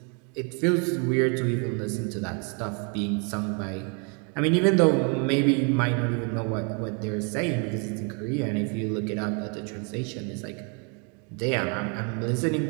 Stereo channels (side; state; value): left; quieter; 36.1 dB